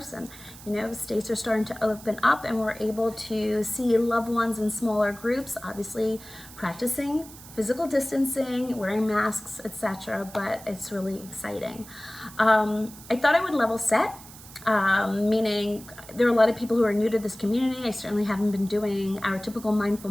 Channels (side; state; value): right; noise; hiss, 18 dB below the sound